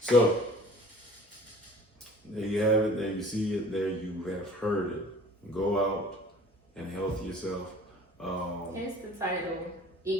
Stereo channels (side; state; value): both; normal; correlation 0.47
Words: So there you have it. There you see it. There you have heard it. Go out and health yourself. Hence the title,